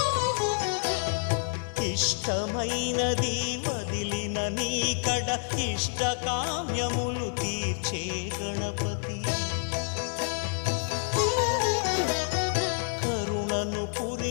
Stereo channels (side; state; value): right; silent; digital silence